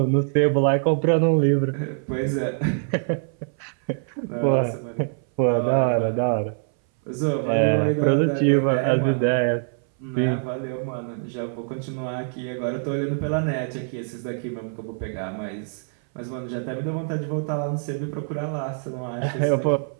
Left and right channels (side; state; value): left; silent; 60 dB below the other